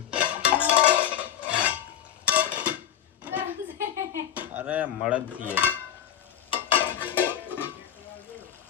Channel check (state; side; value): quieter; right; 10.2 dB